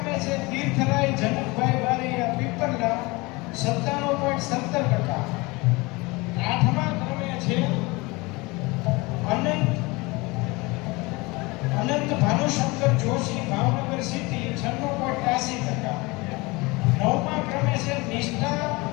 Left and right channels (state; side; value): quieter; right; 24.4 dB